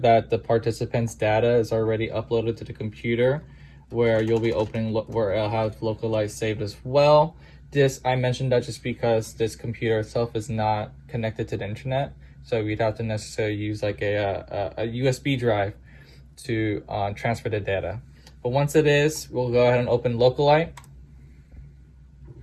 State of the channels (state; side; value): identical; both; correlation 1.00